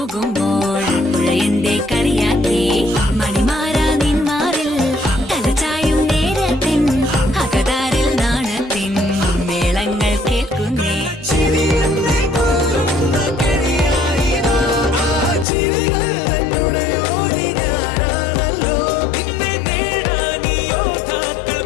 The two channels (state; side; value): drops out; right; at 15.5 s